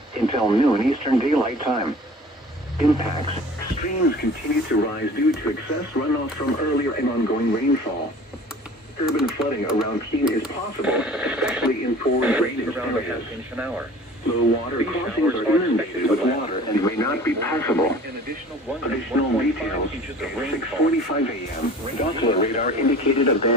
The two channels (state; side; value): normal; both; correlation 0.45